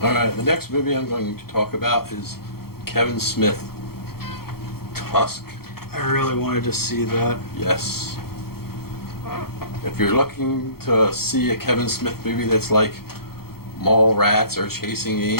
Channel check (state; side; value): late; right; 0.94 ms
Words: All right, the next movie I'm going to talk about is Kevin Smith, Tusk. I really wanted to see that. Yes. If you're looking to see a Kevin Smith movie that's like Mallrats or Chasing